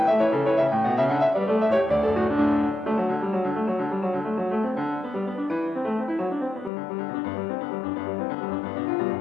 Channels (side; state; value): right; drops out; at 6.7 s